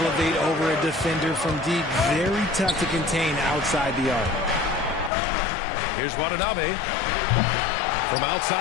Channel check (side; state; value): right; drops out; at 5.1 s